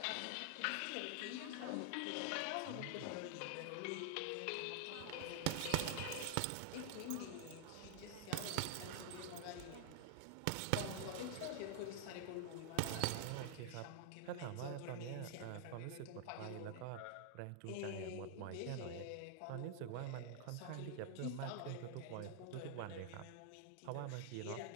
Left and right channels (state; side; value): different; both; correlation -0.01